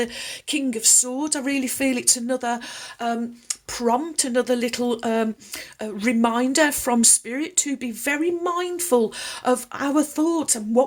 King of Swords, I really feel it's another prompt, another little reminder from Spirit to be very mindful of our thoughts and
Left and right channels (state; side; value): identical; both; correlation 1.00